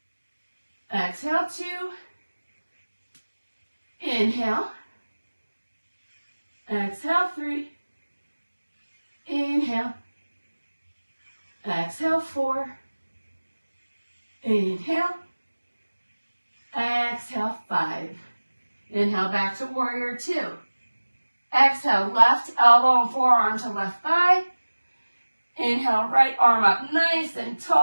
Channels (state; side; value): inverted; both; correlation -1.00